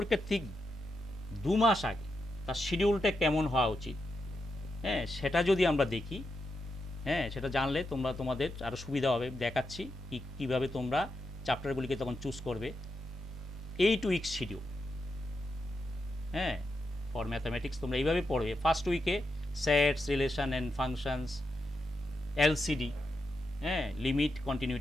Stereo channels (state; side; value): normal; both; correlation 0.85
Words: ঠিক 2 মাস আগে তার শিডিউলটা কেমন হওয়া উচিত, হ্যাঁ, সেটা যদি আমরা দেখি, হ্যাঁ, সেটা জানলে তোমাদের আরও সুবিধা হবে। দেখাচ্ছি কীভাবে তোমরা চ্যাপ্টারগুলিকে তখন চুজ করবে। 8 উইক শিডিউল, হ্যাঁ, ফর ম্যাথামেটিক্স তোমরা এইভাবে পড়বে। ফার্স্ট উইকে sets, relation and functions, LCD, হ্যাঁ, লিমিট,